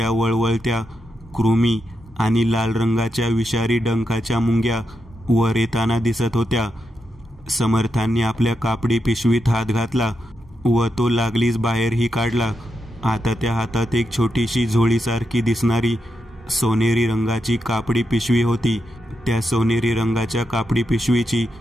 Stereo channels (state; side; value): normal; both; correlation 0.85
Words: वळवळत्या कृमी आणि लाल रंगाच्या विषारी डंखाच्या मुंग्या वर येताना दिसत होत्या. समर्थांनी आपल्या कापडी पिशवीत हात घातला व तो लागलीच बाहेरही काढला. आता त्या हातात एक छोटीशी झोळीसारखी दिसणारी सोनेरी रंगाची कापडी पिशवी होती. त्या सोनेरी रंगाच्या कापडी पिशवीची